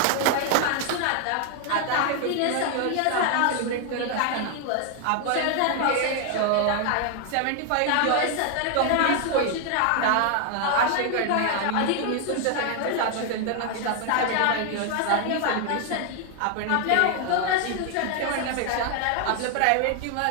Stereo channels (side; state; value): both; different; correlation 0.00